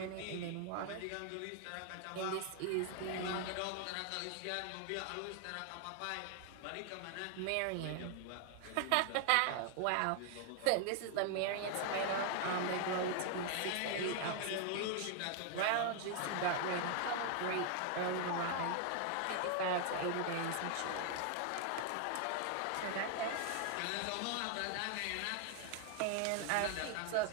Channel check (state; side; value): different; both; correlation 0.00